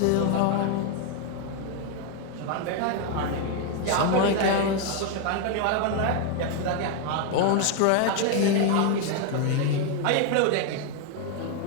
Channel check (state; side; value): different; both; correlation 0.01